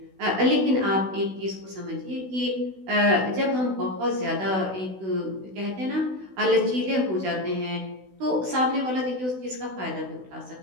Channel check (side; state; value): left; late; 16 ms